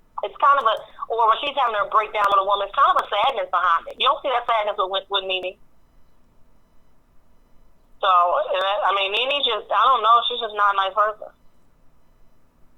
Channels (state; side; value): identical; both; correlation 1.00